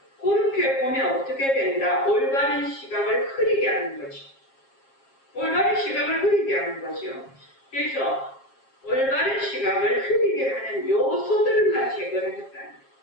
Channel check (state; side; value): late; right; 7.4 ms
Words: 그렇게 보면 어떻게 된다? 올바른 시각을 흐리게 하는 거지. 올바른 시각을 흐리게 하는 거죠. 그래서 올바른 시각을 흐리게 하는 요소들만 제거를 했다는